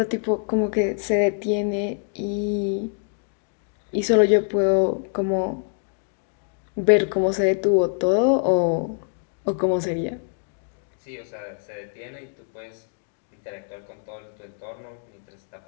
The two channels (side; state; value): right; silent; 59 dB below the other